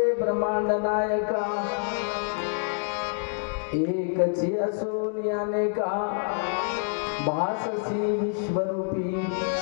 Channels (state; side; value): silent; right; 60 dB below the other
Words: ब्रह्मांड नायका, एकची असोनी अनेका, भाससी विश्वरूपी.